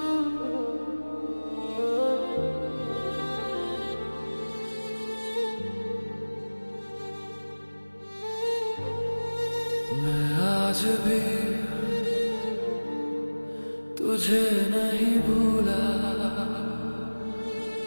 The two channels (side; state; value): both; inverted; correlation -1.00